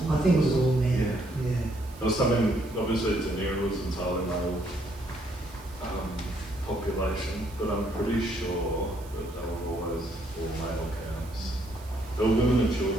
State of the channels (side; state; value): right; noise; hiss, 22 dB below the sound